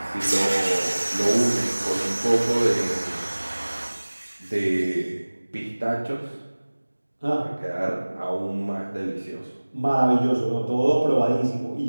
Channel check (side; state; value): both; inverted; correlation -1.00